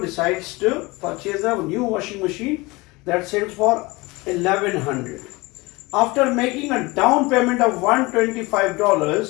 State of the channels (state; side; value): quieter; right; 23.3 dB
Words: to purchase a new washing machine that sells for $1,100. After making a down payment of